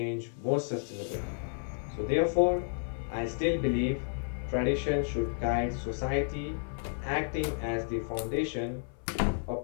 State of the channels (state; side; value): silent; right; 57 dB below the other